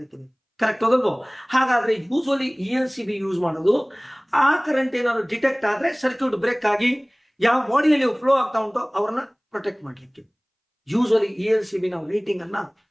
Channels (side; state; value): both; identical; correlation 1.00